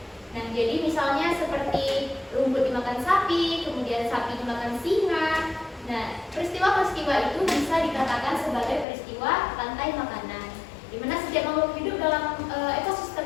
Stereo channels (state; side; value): drops out; right; at 8.8 s